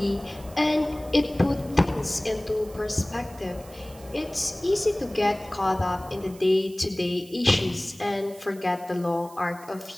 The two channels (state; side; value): noise; right; hiss, 22 dB below the sound